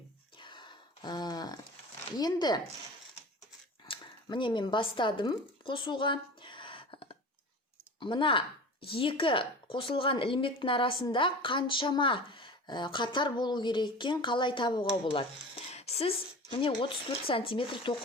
Енді міне мен бастадым қосуға. Мына екі қосылған ілмектің арасында қаншама қатар болу кереккен қалай табуға болады. Сіз міне 34 сантиметр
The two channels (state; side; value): normal; both; correlation 0.35